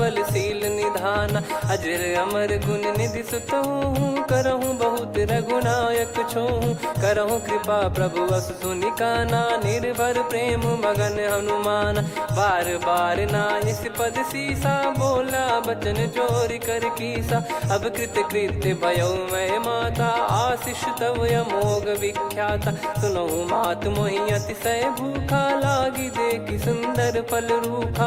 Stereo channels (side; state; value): both; identical; correlation 1.00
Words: निधाना। अजर अमर गुण निधि सुतहु, करहु बहुत रघुनायक छोहु। करहु कृपा प्रभु अस सुनि काना, निर्भर प्रेम मगन हनुमान। बार बार नायस पद सीसा, बोला बचन चोरी कर कीसा। अब कृत कृत्य भयो मैं माता, आशीष तव अमोघ विख्याता। सुनहु मात मोहि अतिशय भूखा, लागी देखि सुंदर फल